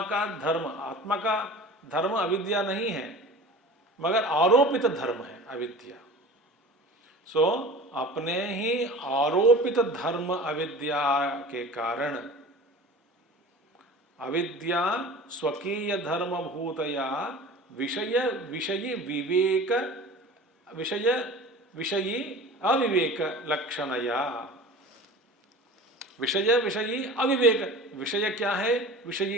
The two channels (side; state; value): both; normal; correlation 0.39